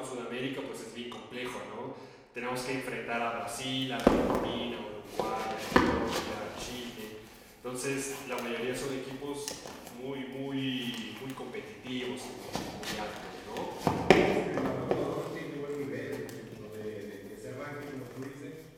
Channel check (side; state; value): both; identical; correlation 1.00